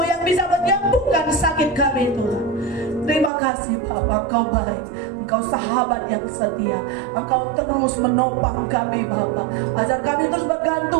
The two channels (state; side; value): drops out; left; at 3.3 s